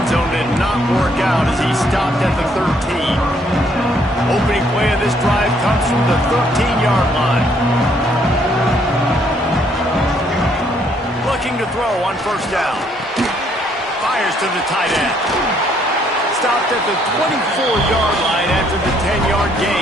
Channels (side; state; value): both; normal; correlation 0.68